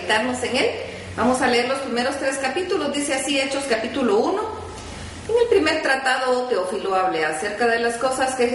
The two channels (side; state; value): both; identical; correlation 1.00